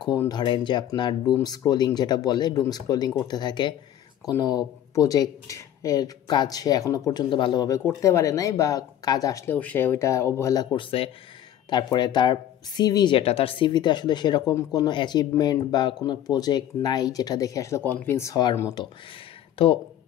ধরেন যে আপনার ডুম স্ক্রোলিং যেটা বলে, ডুম স্ক্রোলিং করতে থাকে। কোনো প্রজেক্ট এর কাজ সে এখনো পর্যন্ত ভালোভাবে করতে পারে নাই, বা কাজ আসলেও সে ওইটা অবহেলা করছে। তারপরে তার সিভি যেটা, তার সিভিতে আসলে সেরকম কোনো অ্যাচিভমেন্ট বা কোনো প্রজেক্ট নাই যেটা দেখে আসলে কনভিন্স হওয়ার মতো। তো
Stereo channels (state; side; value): quieter; right; 11.1 dB